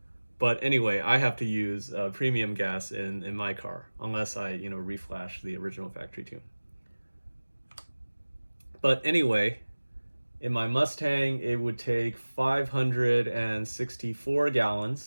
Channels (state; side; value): inverted; both; correlation -1.00